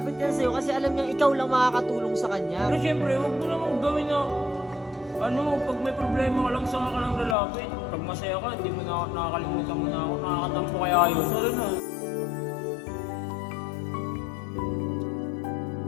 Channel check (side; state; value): right; drops out; at 7.4 s